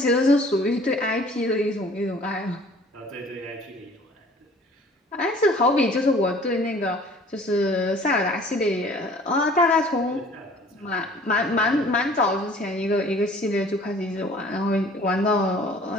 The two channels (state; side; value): normal; both; correlation 0.51